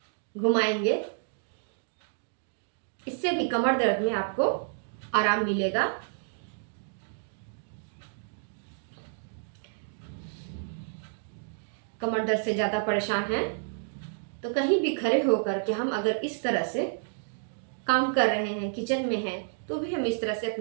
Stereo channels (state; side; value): silent; left; digital silence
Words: घुमाएंगे। इससे भी कमर दर्द में आपको आराम मिलेगा। कमर दर्द से ज़्यादा परेशान हैं तो कहीं भी खड़े होकर के हम अगर इस तरह से काम कर रहे हैं, किचन में हैं, तो भी हम इस तरह से